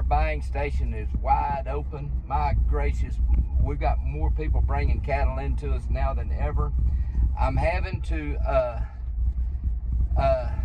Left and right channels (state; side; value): identical; both; correlation 1.00